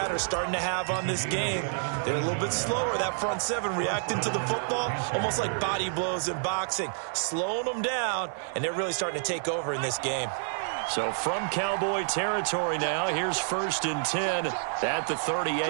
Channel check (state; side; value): silent; left; digital silence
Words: are starting to have on this game. They're a little bit slower, that front seven, reacting to the football, almost like body blows in boxing, slowing them down, and they're really starting to take over in this game. So from Cowboy territory now, here's 1st and 10 at the